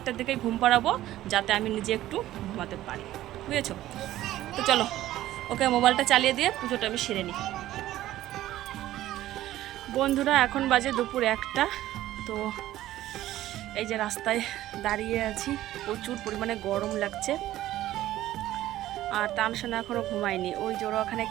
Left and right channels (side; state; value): left; quieter; 14.4 dB